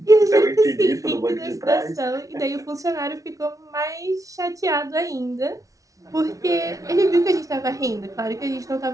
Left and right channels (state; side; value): late; left; 0.17 ms